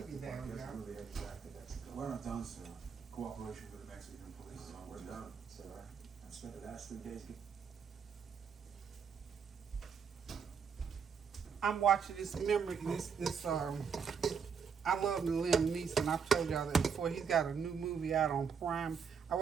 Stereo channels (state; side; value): quieter; left; 6.5 dB